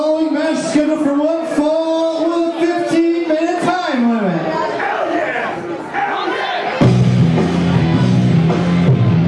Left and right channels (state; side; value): identical; both; correlation 1.00